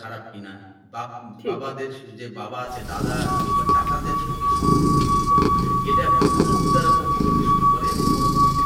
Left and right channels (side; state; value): both; identical; correlation 1.00